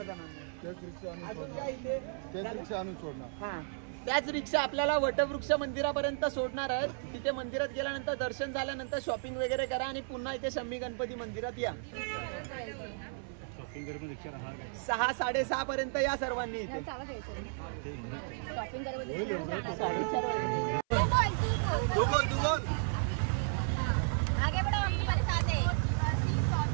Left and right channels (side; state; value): left; silent; 55 dB below the other